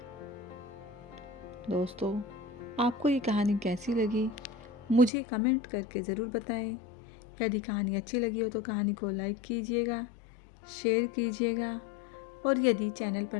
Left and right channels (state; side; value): drops out; right; at 5.1 s